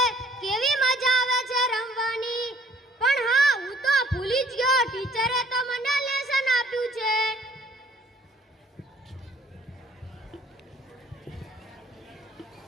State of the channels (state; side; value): normal; both; correlation 0.58